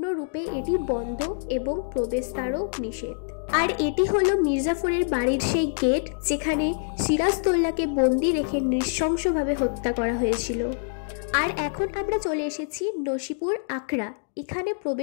এটি বন্ধ এবং প্রবেশদ্বারও নিষেধ। আর এটি হলো মির্জাফরের বাড়ির সেই গেট যেখানে সিরাজদৌল্লাকে বন্দি রেখে নৃশংসভাবে হত্যা করা হয়েছিল। আর এখন আমরা চলে এসেছি নসিপুর আখড়া। এখানে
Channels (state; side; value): silent; right; digital silence